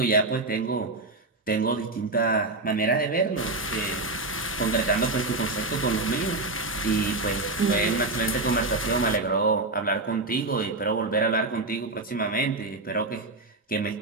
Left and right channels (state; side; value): quieter; left; 3.1 dB